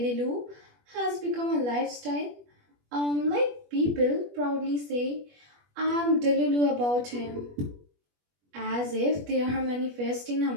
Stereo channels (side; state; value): left; late; 21 ms